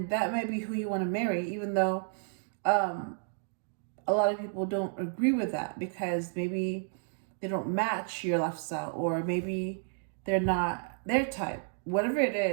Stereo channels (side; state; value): left; silent; 57 dB below the other